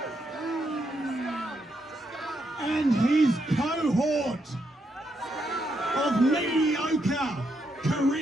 And his cohort of mediocre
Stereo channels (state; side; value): normal; both; correlation 0.80